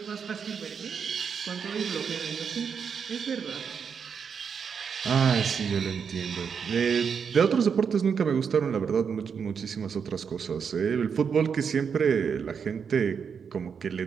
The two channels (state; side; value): quieter; left; 6.6 dB